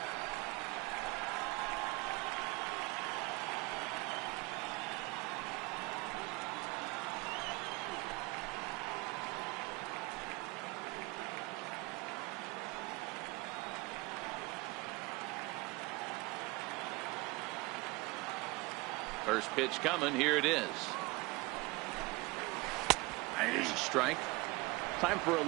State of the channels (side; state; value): left; quieter; 23.6 dB